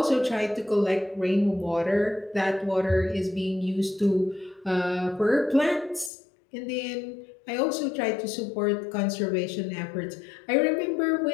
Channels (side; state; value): right; drops out; at 6.1 s